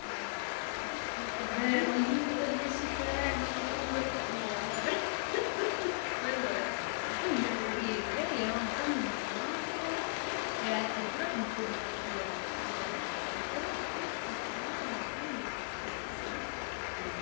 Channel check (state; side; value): silent; right; digital silence